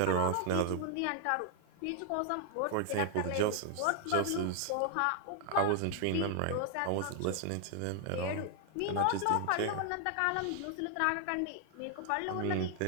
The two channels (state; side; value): different; both; correlation 0.00